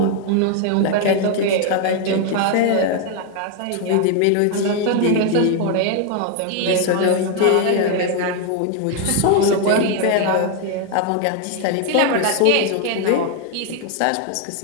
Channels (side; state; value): both; different; correlation 0.00